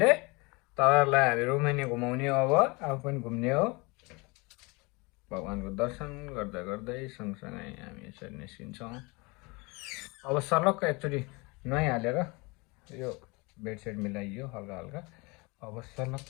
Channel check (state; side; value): quieter; right; 26.9 dB